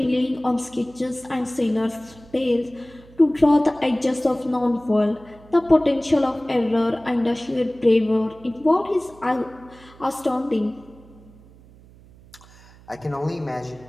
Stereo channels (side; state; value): right; noise; hum, 24 dB below the sound